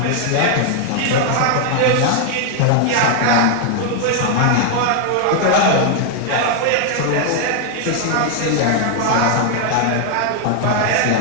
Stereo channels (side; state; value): both; different; correlation 0.00